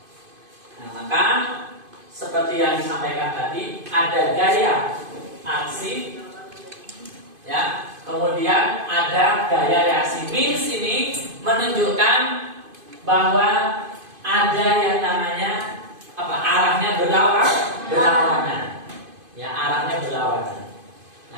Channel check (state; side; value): late; left; 2.5 ms